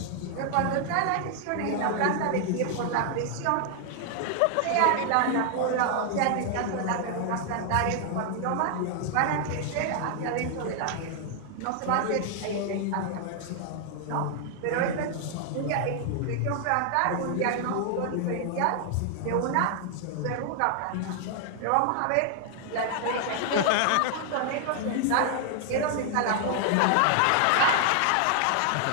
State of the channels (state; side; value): different; both; correlation 0.00